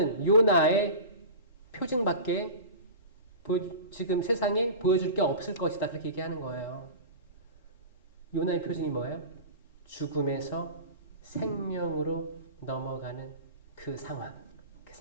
요나의 표징밖에 지금 세상에 보여줄 게 없을 것이다. 그렇게 얘기하는 거예요. 요나의 표징이 뭐예요? 죽음에서 생명으로 넘어가는 그 상황. 그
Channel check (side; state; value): both; inverted; correlation -0.32